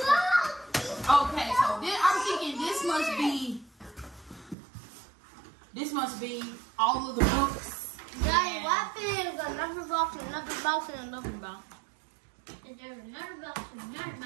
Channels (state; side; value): drops out; left; at 4.5 s